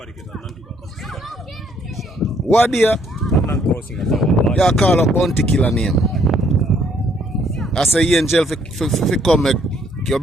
What do you call a bounty killer name? I say angel if you come make you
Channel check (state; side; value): normal; both; correlation 0.66